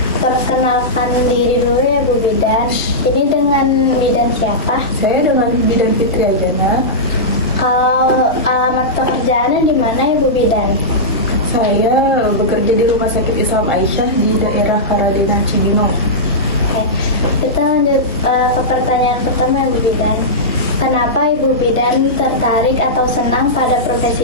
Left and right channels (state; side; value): normal; both; correlation -0.12